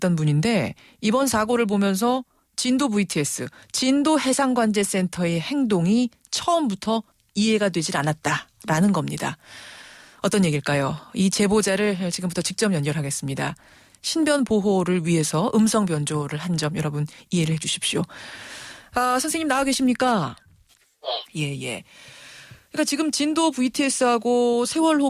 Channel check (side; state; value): both; identical; correlation 1.00